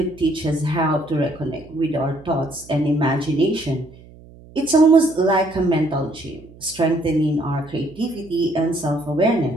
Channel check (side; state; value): right; noise; hum, 22 dB below the sound